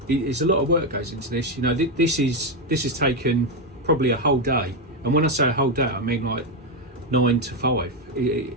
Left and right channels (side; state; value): both; normal; correlation 0.07